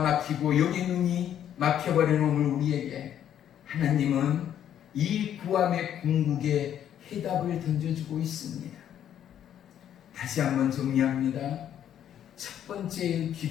막히고 영의 눈이 막혀버린 오늘 우리에게 하나님은 이 구함의 궁극에 해답을 던져주고 있습니다. 다시 한번 정리합니다. 첫 번째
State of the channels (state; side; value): quieter; right; 10.2 dB